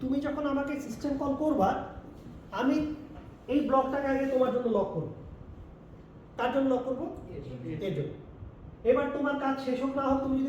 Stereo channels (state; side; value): identical; both; correlation 1.00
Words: তুমি যখন আমাকে সিস্টেম কল করবা, আমি এই ব্লকটাকে আগে তোমার জন্য লক করব। তার জন্য লক করবো এর জন্য। এবার তোমার কাজ শেষ হোক না হোক, তুমি